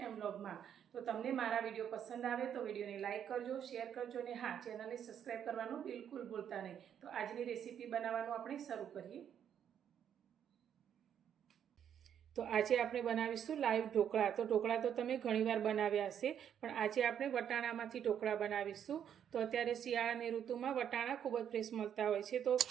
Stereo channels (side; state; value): left; quieter; 9.0 dB